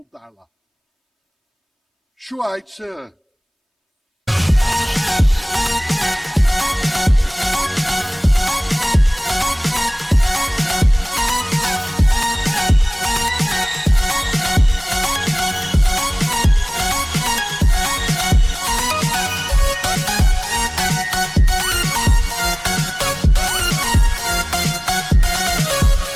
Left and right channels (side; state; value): both; identical; correlation 1.00